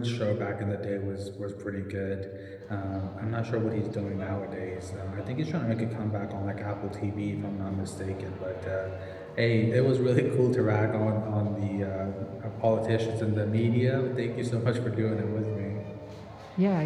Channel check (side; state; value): both; identical; correlation 1.00